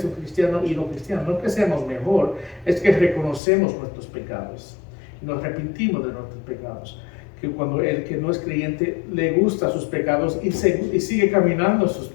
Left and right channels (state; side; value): drops out; right; at 3.4 s